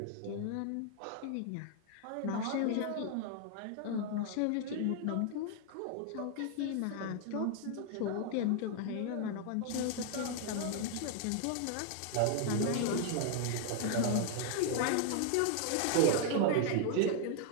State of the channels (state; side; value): different; both; correlation 0.00